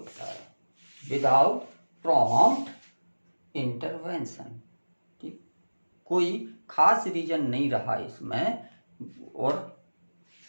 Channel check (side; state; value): both; inverted; correlation -1.00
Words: है, विदाउट प्रॉम्प्ट इंटरवेंशन। ठीक, कोई खास रीजन नहीं रहा इसमें, और